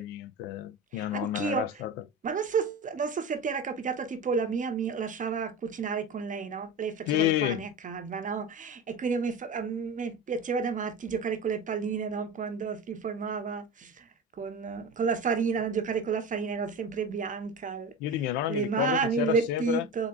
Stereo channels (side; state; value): both; normal; correlation 0.28